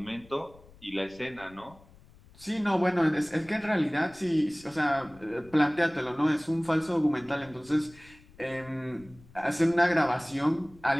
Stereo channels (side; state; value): left; noise; rumble, 24 dB below the sound